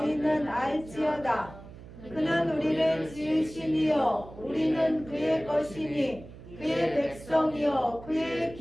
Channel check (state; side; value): noise; right; hum, 17 dB below the sound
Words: 알지어다. 그는 우리를 지으시니요 우리는 그의 것이니 그의 백성이요 그의